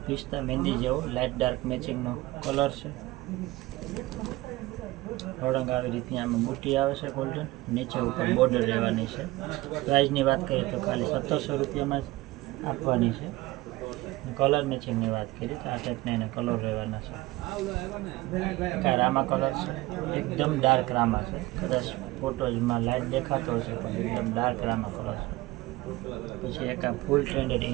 પિસ્તા મહેંદી જેવો લાઇટ ડાર્ક મેચિંગનો કલર છે. ઓળંગ આવી રીતની આમાં બુટી આવે છે ગોલ્ડન, નીચે ઉપર બોર્ડર રહેવાની છે. પ્રાઇસની વાત કરીએ તો ખાલી 1700 રૂપિયામાં જ આપવાની છે. કલર મેચિંગની વાત કરીએ તો આ ટાઈપના એના કલર રહેવાના છે. કાંઈ રામા કલર છે, એકદમ ડાર્ક રામા છે. કદાચ ફોટોઝમાં લાઇટ દેખાતો હશે પણ એકદમ ડાર્ક રામા કલર છે. પછી એક આ ફૂલ ટ્રેન્ડેડ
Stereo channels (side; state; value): left; quieter; 19.3 dB